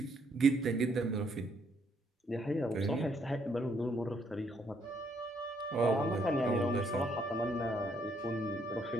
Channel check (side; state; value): both; normal; correlation 0.71